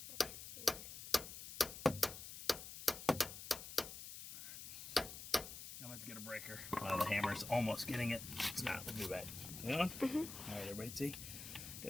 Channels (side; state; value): left; noise; hiss, 10 dB below the sound